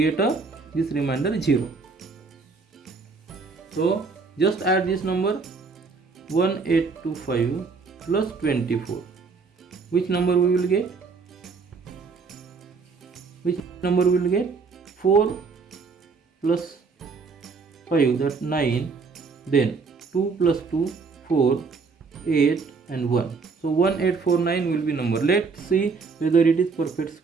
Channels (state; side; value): quieter; left; 4.7 dB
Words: this remainder 0. So just add this number 1825 plus 24. Which number we will get? Which number we will get? 4 plus 5, that 9, then 2 plus 2, 4, 8 and 1. So 1849 will be number. Let's see whether it is perfect